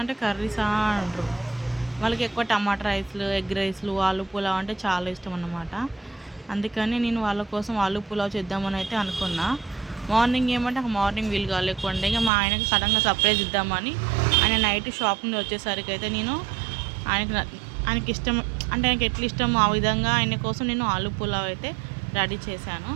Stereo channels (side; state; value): left; drops out; at 12.3 s